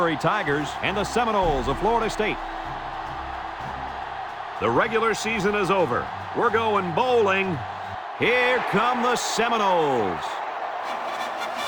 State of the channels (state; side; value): identical; both; correlation 1.00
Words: Tigers and the Seminoles of Florida State. The regular season is over. We're going bowling. Here come the Seminoles.